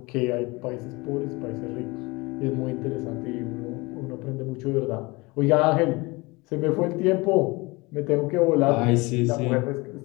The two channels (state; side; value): quieter; right; 24.4 dB